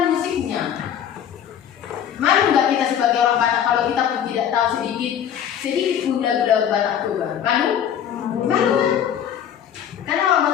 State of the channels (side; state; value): right; quieter; 9.3 dB